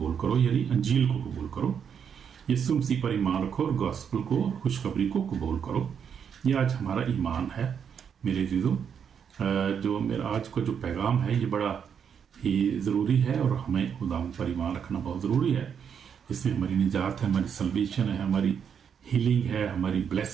करो, यानी अंजील को कबूल करो। यीशु मसीह पर ईमान रखो और गॉस्पल को, खुशखबरी को कबूल करो। ये आज हमारा ईमान है मेरे जीजों। जो मेरा आज का जो पैगाम है ये बड़ा ही ज़रूरी है और हमें खुदा पर ईमान रखना बहुत ज़रूरी है। इसमें हमारी निजात है, हमारी सल्वेशन है, हमारी हीलिंग है, हमारी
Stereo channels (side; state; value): left; quieter; 7.5 dB